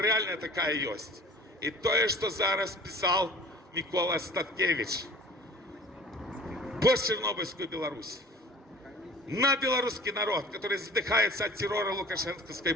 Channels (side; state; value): both; normal; correlation 0.46